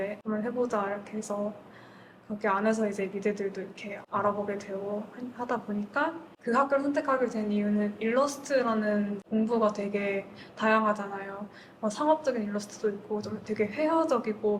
한번 해보자 이렇게 해서 거기 안에서 이제 미대들도 이렇게 알아보게 되고 하다 보니까 그 학교를 선택하게 된 이유는 일러스트라는 공부가 되게 다양하잖아요. 상업적인 일러스트도 있고 좀 되게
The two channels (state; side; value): identical; both; correlation 1.00